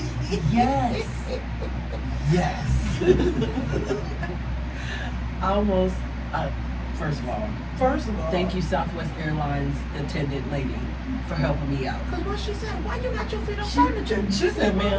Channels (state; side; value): identical; both; correlation 1.00